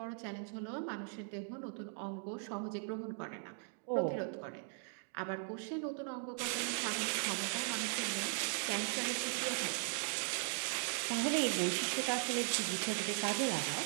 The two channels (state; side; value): silent; left; 52 dB below the other